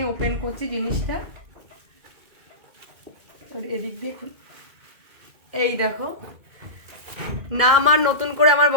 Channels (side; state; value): left; late; 2.1 ms